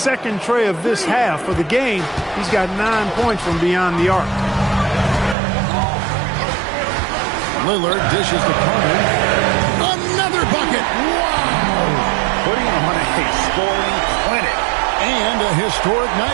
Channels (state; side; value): drops out; left; at 5.4 s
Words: tray of this half. For the game, he's got 9 points from beyond the arc. Lillard dishes to Carter. Another bucket. Wow. Putting on a scoring clinic. And a historic